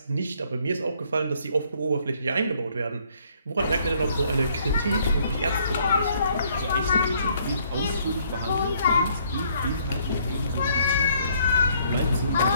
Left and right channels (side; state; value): both; inverted; correlation -0.65